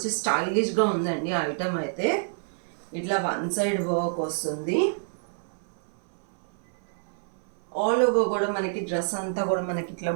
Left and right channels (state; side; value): silent; left; 59 dB below the other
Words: స్టైలిష్గా ఉందండి ఐటమ్ అయితే. ఇట్లా వన్ సైడ్ వర్క్ వస్తుంది. ఆల్ ఓవర్ కూడా మనకి డ్రెస్ అంతా కూడా మనకి ఇట్లా